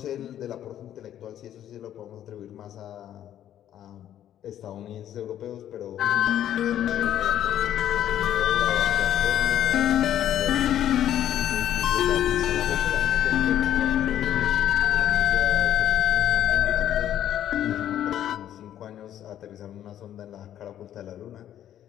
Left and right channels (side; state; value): right; quieter; 11.2 dB